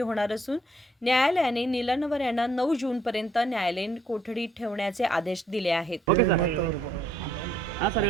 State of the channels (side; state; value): both; normal; correlation 0.67